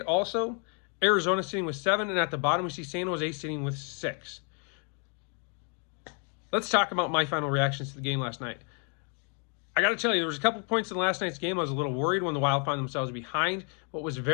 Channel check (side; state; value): right; quieter; 39.2 dB